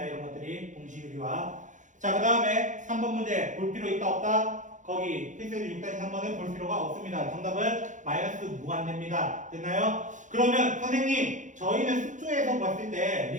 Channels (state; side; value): late; left; 0.36 ms